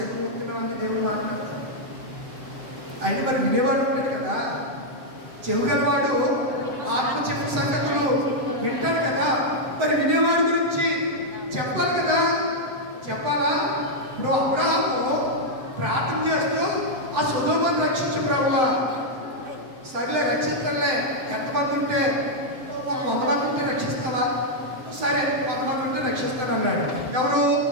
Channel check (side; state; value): left; late; 7.8 ms